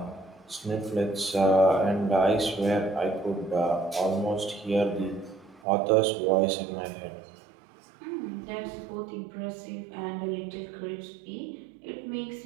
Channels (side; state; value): left; drops out; at 5.6 s